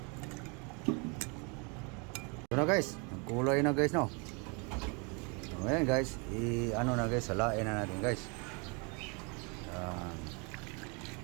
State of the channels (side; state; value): left; quieter; 33.0 dB